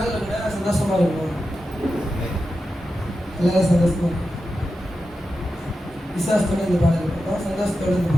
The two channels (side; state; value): both; normal; correlation 0.90